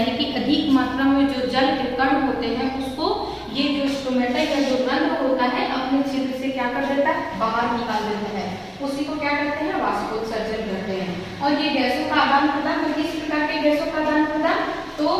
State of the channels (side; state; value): both; identical; correlation 1.00